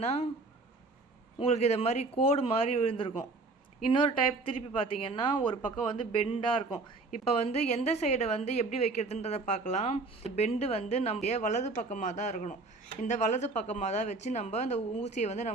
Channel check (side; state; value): left; quieter; 3.5 dB